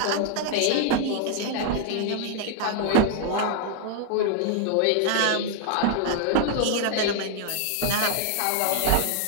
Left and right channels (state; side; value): different; both; correlation 0.00